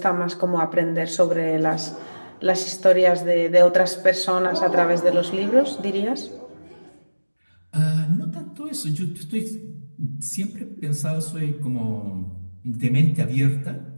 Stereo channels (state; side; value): inverted; both; correlation -1.00